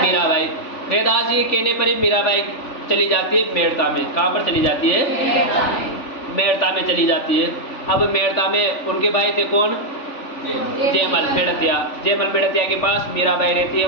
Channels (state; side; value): late; right; 3.5 ms